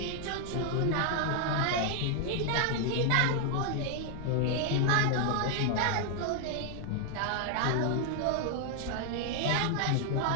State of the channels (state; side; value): different; both; correlation 0.00